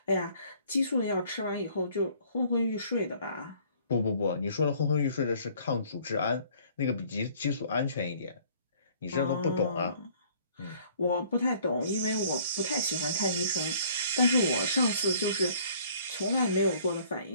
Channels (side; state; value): both; inverted; correlation -0.57